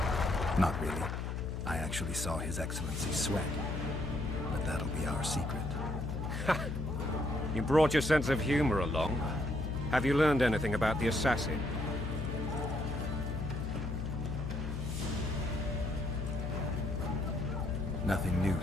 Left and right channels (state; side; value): noise; left; hum, 3 dB below the sound